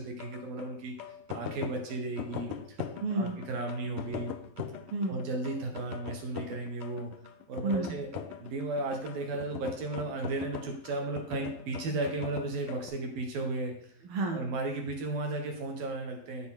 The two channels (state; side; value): late; left; 11 ms